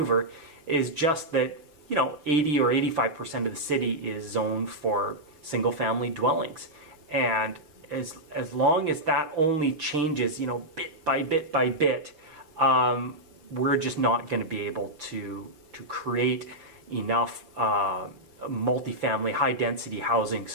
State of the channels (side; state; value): left; late; 6.3 ms